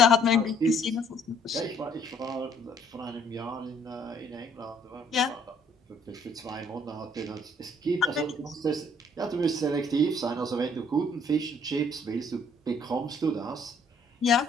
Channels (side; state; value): both; normal; correlation 0.62